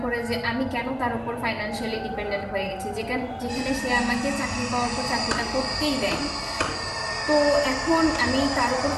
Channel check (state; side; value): identical; both; correlation 1.00